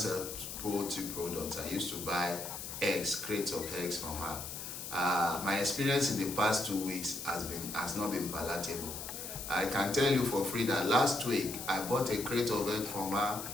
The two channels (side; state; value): left; noise; hiss, 8 dB below the sound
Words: poultry products. I used to buy eggs, crates of eggs from her. My experience in the past 2 weeks has not been palatable. I can tell you for free that last week I bought a crate of eggs from her